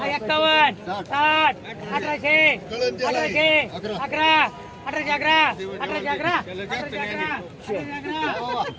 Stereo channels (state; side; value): identical; both; correlation 1.00